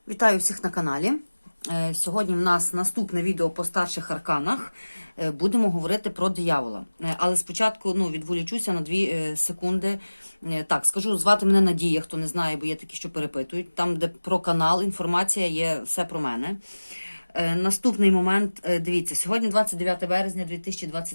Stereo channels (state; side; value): inverted; both; correlation -1.00